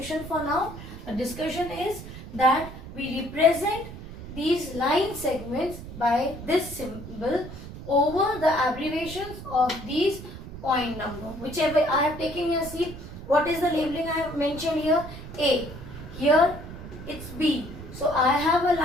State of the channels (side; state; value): right; noise; rumble, 12 dB below the sound